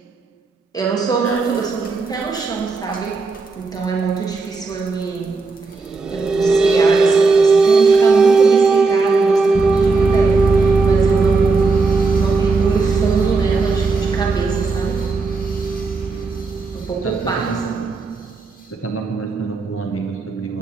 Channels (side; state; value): left; quieter; 4.2 dB